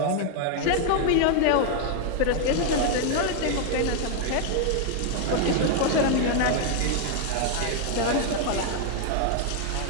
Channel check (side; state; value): both; different; correlation 0.00